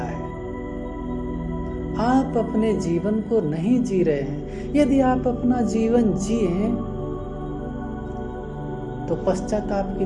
आप अपने जीवन को नहीं जी रहे हैं। यदि आप अपना जीवन जिए तो पश्चाताप की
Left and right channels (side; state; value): both; identical; correlation 1.00